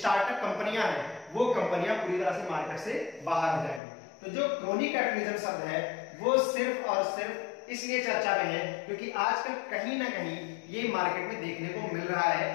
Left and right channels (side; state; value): right; drops out; at 3.8 s